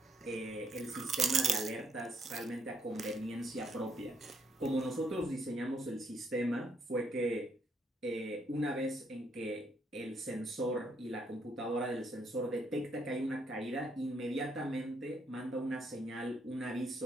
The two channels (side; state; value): both; normal; correlation 0.72